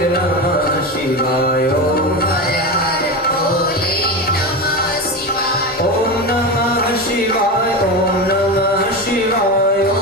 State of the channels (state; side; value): normal; both; correlation 0.21